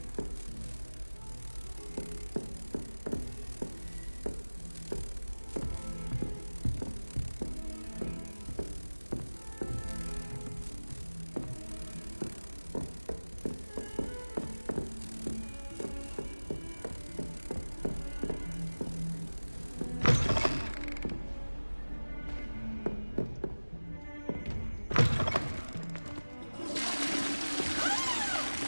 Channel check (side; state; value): both; inverted; correlation -1.00